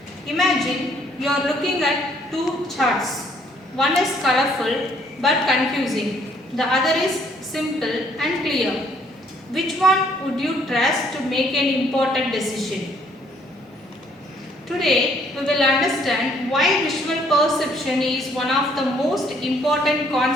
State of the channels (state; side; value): normal; both; correlation 0.65